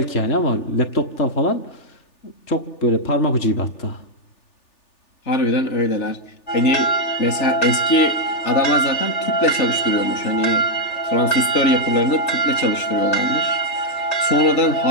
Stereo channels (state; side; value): late; right; 3.4 ms